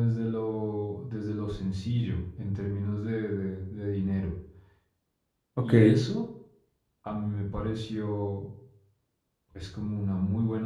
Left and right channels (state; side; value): identical; both; correlation 1.00